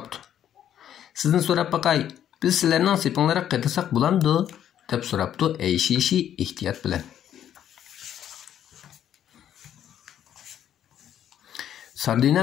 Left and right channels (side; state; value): right; quieter; 10.3 dB